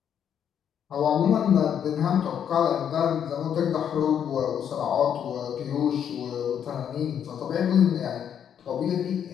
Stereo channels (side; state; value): right; quieter; 8.7 dB